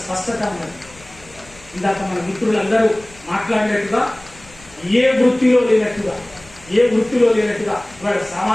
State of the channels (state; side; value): noise; left; rumble, 24 dB below the sound